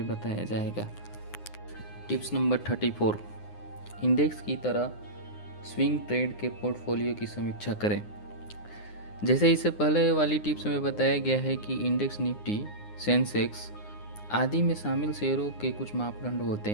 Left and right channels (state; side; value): late; right; 9.7 ms